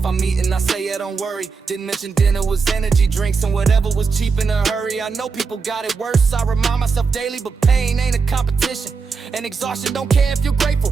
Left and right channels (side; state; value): left; quieter; 5.1 dB